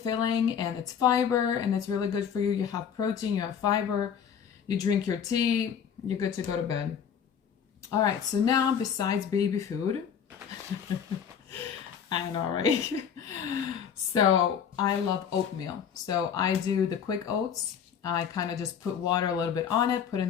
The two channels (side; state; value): right; quieter; 7.8 dB